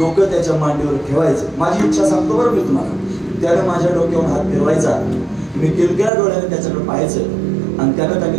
त्याच्या मांडीवर ठेवायचं. माझी इच्छा सांगतो बरं मी तुम्हाला, त्यानं माझ्या डोक्यावर हात फिरवायचा, मी किलकिल्या डोळ्याने त्याच्याकडे पाहायचं, आणि त्यानं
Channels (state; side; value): drops out; left; at 6.1 s